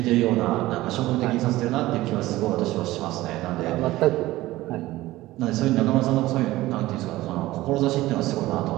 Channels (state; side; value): quieter; left; 17.3 dB